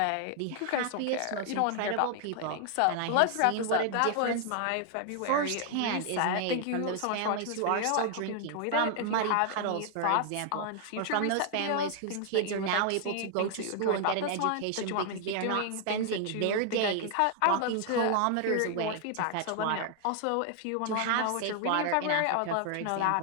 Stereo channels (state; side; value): different; both; correlation 0.00